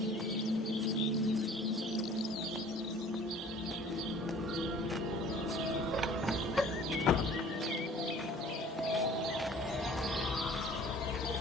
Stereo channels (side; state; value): both; normal; correlation 0.49